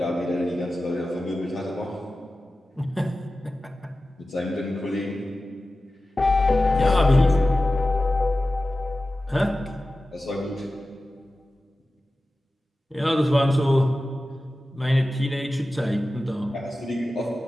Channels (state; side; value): normal; both; correlation 0.95